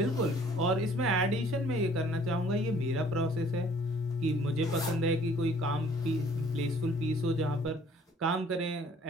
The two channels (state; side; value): normal; both; correlation 0.57